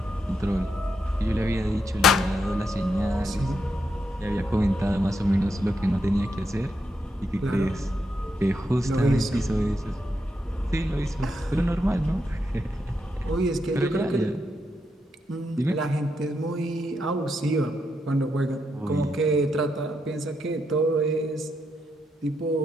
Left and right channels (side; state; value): both; normal; correlation 0.82